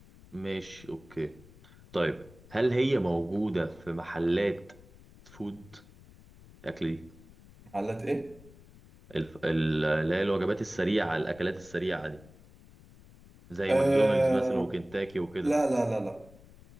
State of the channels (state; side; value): noise; left; rumble, 23 dB below the sound